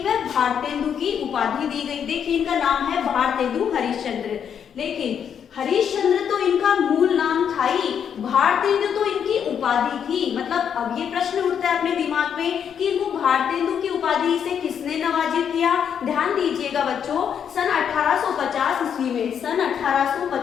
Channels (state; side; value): quieter; right; 8.0 dB